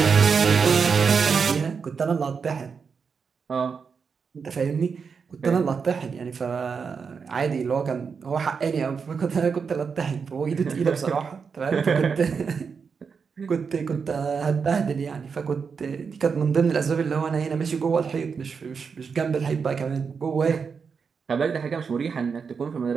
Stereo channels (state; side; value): quieter; left; 5.8 dB